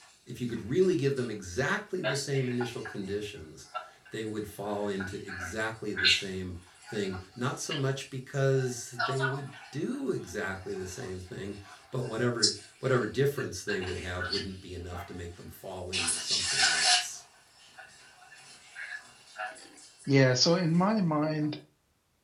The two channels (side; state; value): both; identical; correlation 1.00